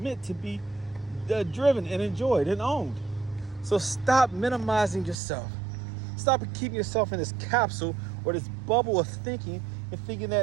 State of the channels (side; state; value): left; drops out; at 5.2 s